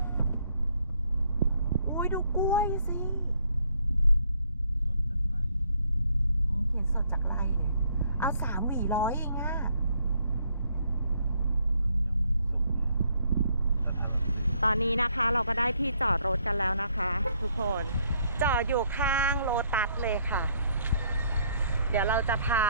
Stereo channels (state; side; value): inverted; both; correlation -0.69